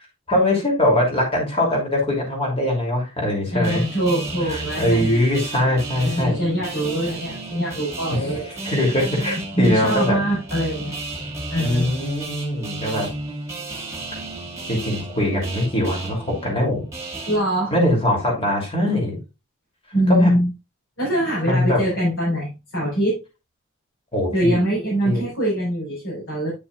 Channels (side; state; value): both; normal; correlation 0.44